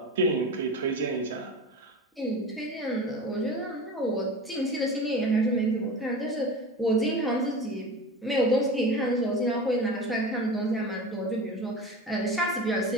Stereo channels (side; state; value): both; normal; correlation 0.32